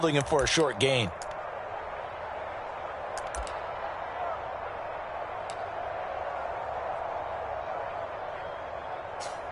him for a short gain.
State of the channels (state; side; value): identical; both; correlation 1.00